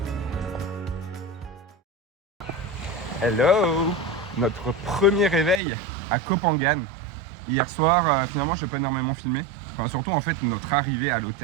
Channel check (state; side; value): drops out; left; at 5.6 s